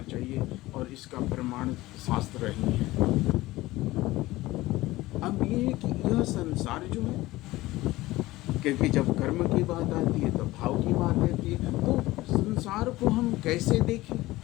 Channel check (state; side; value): quieter; right; 18.3 dB